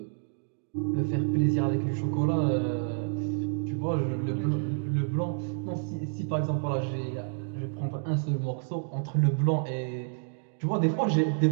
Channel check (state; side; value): silent; left; digital silence